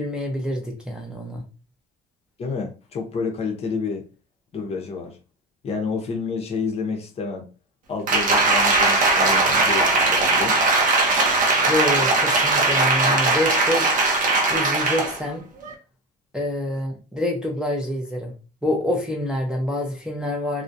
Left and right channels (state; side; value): normal; both; correlation 0.18